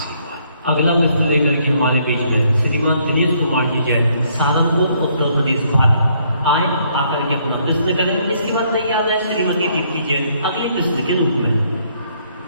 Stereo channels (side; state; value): both; inverted; correlation -0.68